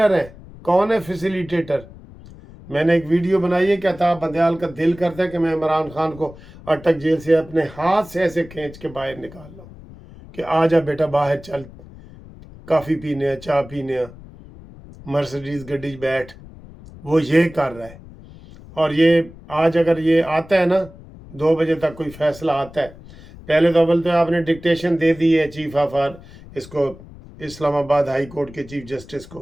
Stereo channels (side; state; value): left; noise; rumble, 19 dB below the sound